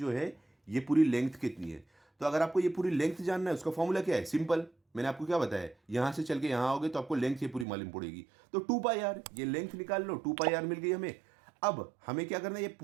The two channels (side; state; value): left; drops out; at 7.7 s